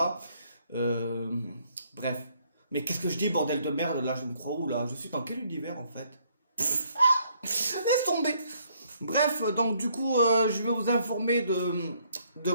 Euh, Bref, mais qu'est-ce que je dis bordel de merde là, je me crois où là? Je suis dans quel univers en fait? Laisse tomber. Bref, donc du coup, je vais vous informer de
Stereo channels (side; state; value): both; inverted; correlation -0.67